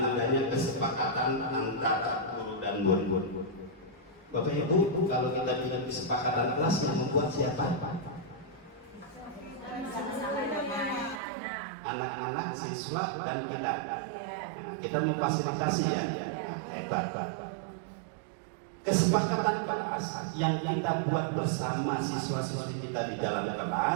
kesepakatan antara guru dan murid. Bapak Ibu, kalau kita bilang kesepakatan kelas yang membuat siapa? Anak-anak, siswa, dan kita. Kita memfasilitasi ya. Hebat. Kesepakatan kelas yang kita buat bersama siswa-siswi kita di dalam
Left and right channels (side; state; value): left; drops out; at 11.2 s